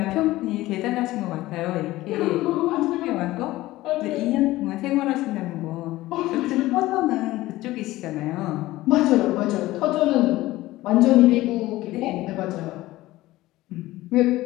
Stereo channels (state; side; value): quieter; right; 17.3 dB